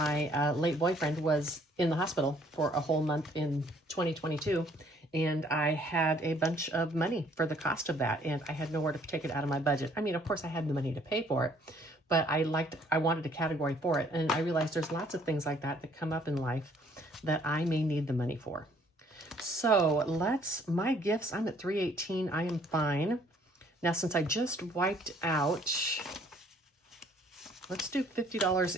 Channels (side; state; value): both; normal; correlation 0.61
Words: late boyfriend was in the hospital for a whole month in 2022. And I had a bunch of money for the cost of that. And I had nowhere to take it out of my budget. I mean, of course I had the money to pay for it, but I wanted a category for it. And I realized there's lots of things like that that come up in life that I may need the money for. So my gifts, I'm at 318. I am fine. Now, since I just wiped out, let's do $50